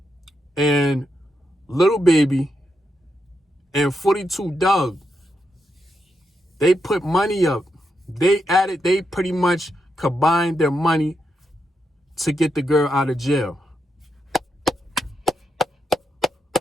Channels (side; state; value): both; normal; correlation 0.84